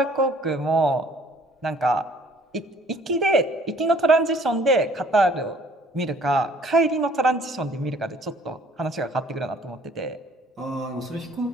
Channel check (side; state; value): both; normal; correlation 0.57